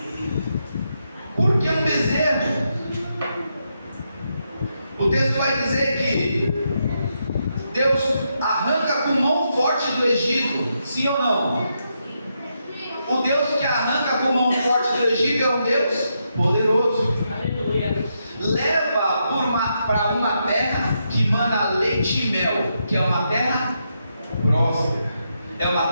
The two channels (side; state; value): both; inverted; correlation -0.82